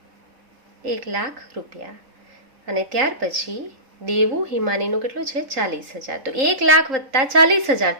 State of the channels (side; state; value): left; late; 3.8 ms